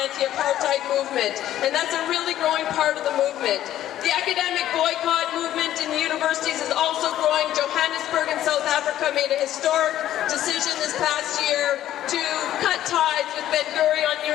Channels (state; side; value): quieter; right; 12.5 dB